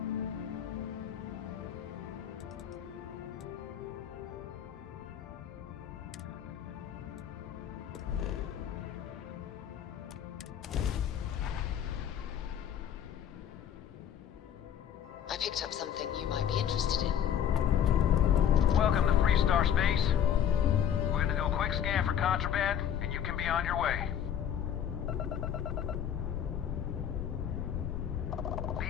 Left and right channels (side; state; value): right; quieter; 9.4 dB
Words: I picked up something you might be interested in. Welcome to Free Star Space. We're gonna do a quick scan for contraband, and you can be on your way.